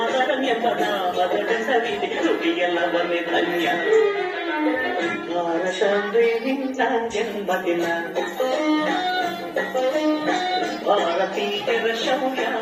ಎಂಬ ನಾಮದ ಹೆಸರಿದೆ ನುಡಿಯೆಲ್ಲ ಒಂದೇ ಧನ್ಯ ಭಾರತವೇ ನಿನ್ನ ಜನ್ಮದಿನ ಭಾರತೀಯರ ಶೌರ್ಯ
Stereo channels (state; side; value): identical; both; correlation 1.00